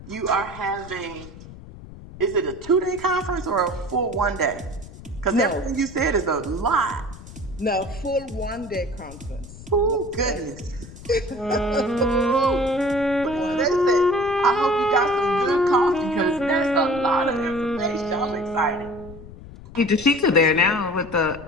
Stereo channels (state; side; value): noise; left; rumble, 16 dB below the sound